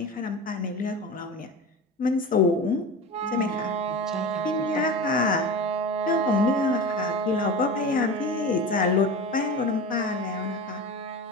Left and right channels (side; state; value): both; normal; correlation 0.29